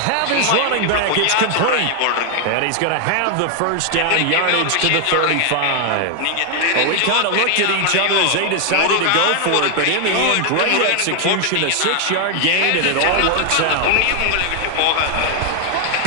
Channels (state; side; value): different; both; correlation 0.00